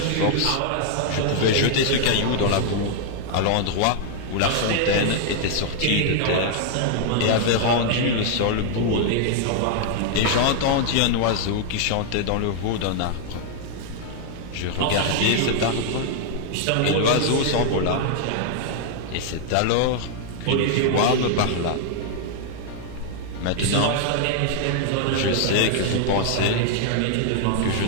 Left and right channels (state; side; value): different; both; correlation 0.00